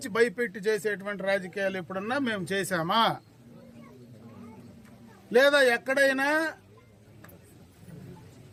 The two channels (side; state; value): both; identical; correlation 1.00